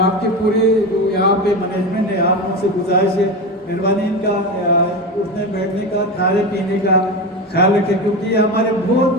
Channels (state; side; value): normal; both; correlation 0.21